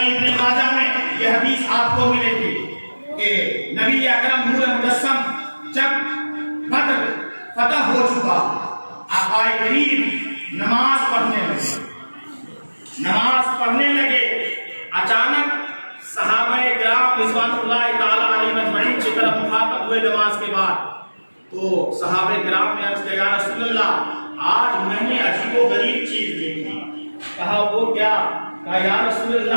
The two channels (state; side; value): inverted; both; correlation -1.00